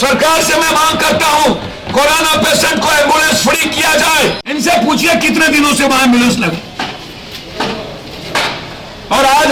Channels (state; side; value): identical; both; correlation 1.00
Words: से मैं मांग करता हूं कोरोना पेशेंट को एम्बुलेंस फ्री किया जाए। इनसे पूछिए कितने दिनों से वहां एम्बुलेंस लगे। और आज